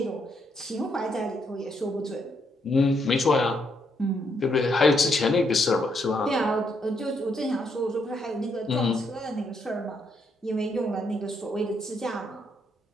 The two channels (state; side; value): normal; both; correlation 0.75